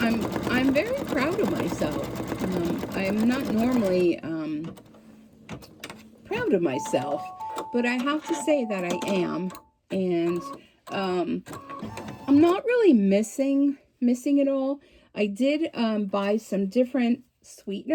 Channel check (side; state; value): both; identical; correlation 1.00